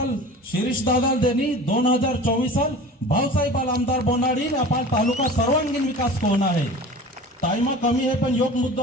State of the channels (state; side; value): normal; both; correlation 0.38